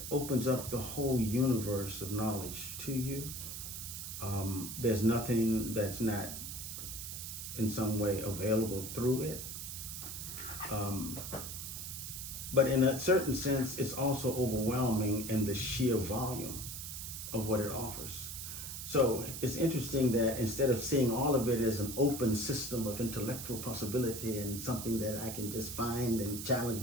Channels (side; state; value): right; noise; hiss, 7 dB below the sound